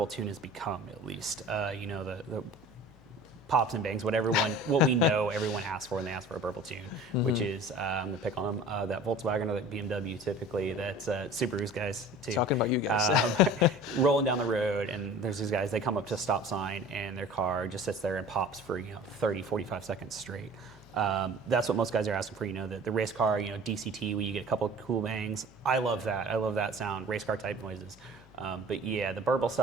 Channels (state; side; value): noise; left; hum, 24 dB below the sound